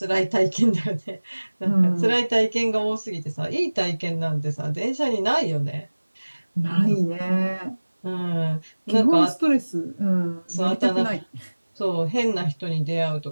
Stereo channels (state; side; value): inverted; both; correlation -1.00